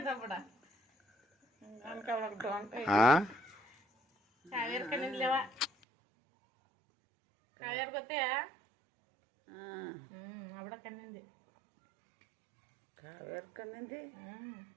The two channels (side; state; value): left; drops out; at 5.7 s